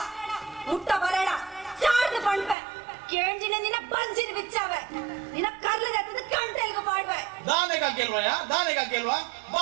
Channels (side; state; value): left; drops out; at 2.6 s